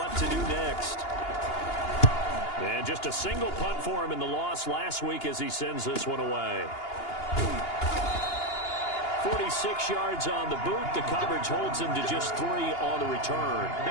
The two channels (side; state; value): right; late; 2.8 ms